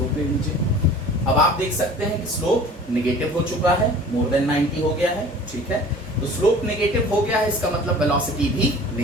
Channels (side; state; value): both; normal; correlation 0.45